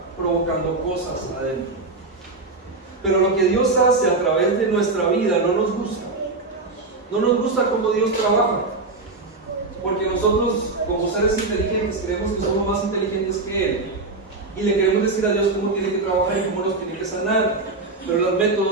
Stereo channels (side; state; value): left; quieter; 3.5 dB